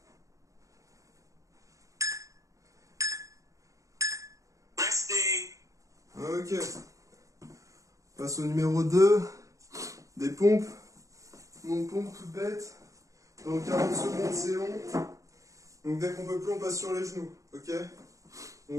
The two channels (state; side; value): late; left; 0.16 ms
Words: Resting. Ok. On passe au numéro 2. Des pompes. Donc pompe toute bête. Donc 40 secondes, c'est long. Donc dès qu'on peut plus, on passe sur les genoux. Ok.